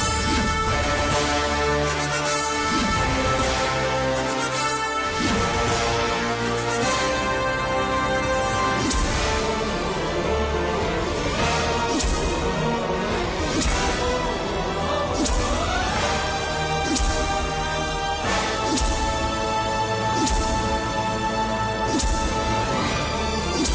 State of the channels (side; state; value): both; identical; correlation 1.00